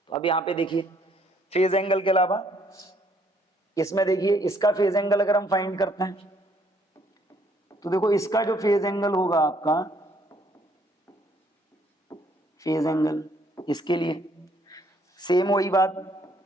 तो अब यहां पे देखिए फेज एंगल के अलावा इसमें देखिए इसका फेज एंगल अगर हम फाइंड करते हैं तो देखो इसका जो फेज एंगल होगा आपका, फेज एंगल इसके लिए सेम वही बात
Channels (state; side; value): normal; both; correlation 0.66